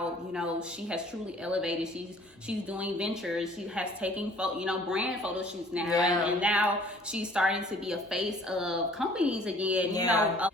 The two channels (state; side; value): normal; both; correlation 0.54